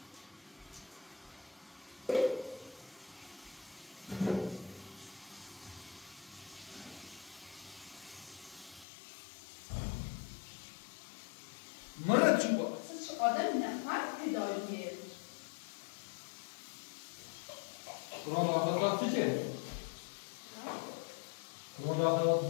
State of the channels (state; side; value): drops out; right; at 8.8 s